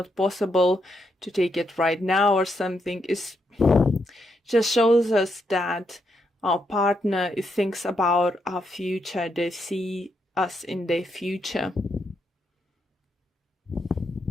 possible to take it right now or something, is just shows us that our partner thinks about our future. They see us in their future.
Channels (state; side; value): normal; both; correlation 0.79